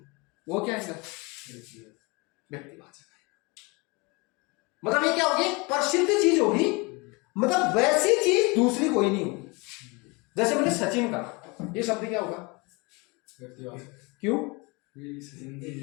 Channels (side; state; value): right; quieter; 27.3 dB